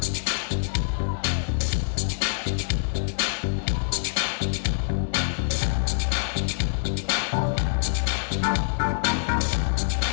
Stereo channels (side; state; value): right; silent; 59 dB below the other